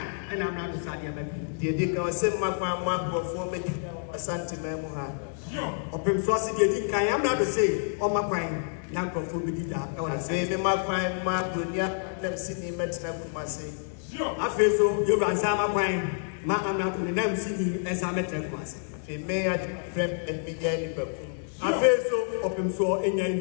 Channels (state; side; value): silent; right; digital silence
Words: and I'm not Sadia. The Dick was sent my mama for me a Santimemoha. Or Pimsosi, the Dick, I am not to say, or my pine, Nanko Fubida, or I say, my pine, Mark, never seen him at Kumasi. I feel so, you ran Sama pine, Ma, I'm not in the name city as I met Kumasi. They may have dreamt and began the I feel so, or Pimso in